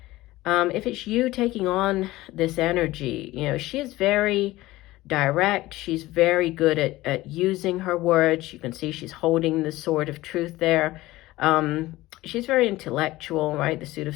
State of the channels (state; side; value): quieter; right; 18.0 dB